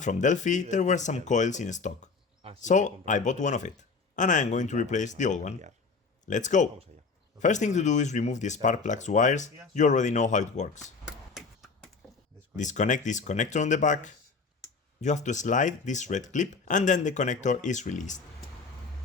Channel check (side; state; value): right; quieter; 4.6 dB